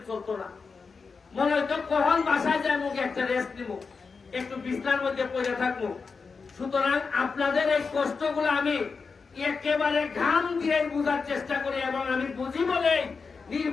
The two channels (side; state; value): right; quieter; 4.9 dB